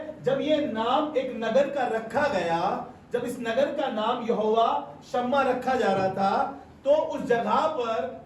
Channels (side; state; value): both; identical; correlation 1.00